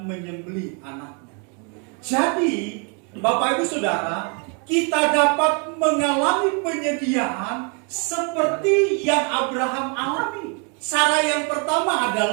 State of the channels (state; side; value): quieter; left; 36.8 dB